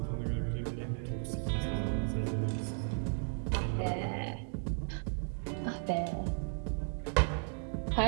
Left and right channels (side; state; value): left; silent; 55 dB below the other